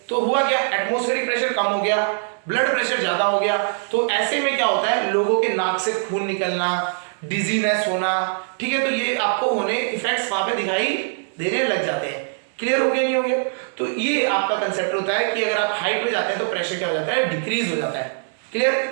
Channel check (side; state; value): left; silent; 64 dB below the other